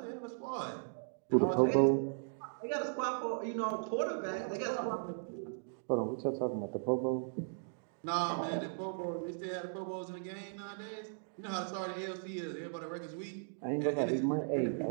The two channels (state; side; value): silent; left; digital silence